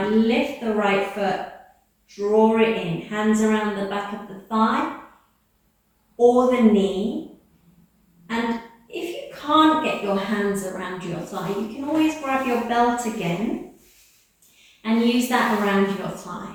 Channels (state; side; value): identical; both; correlation 1.00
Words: lift the right foot, draw it in, hands around the back of the thigh or the knee. And if you can't get your hands around your thigh, you can always grab your belt again and use that around your thigh.